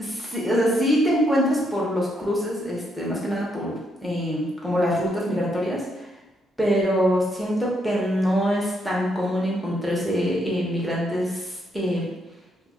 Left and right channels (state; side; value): normal; both; correlation 0.76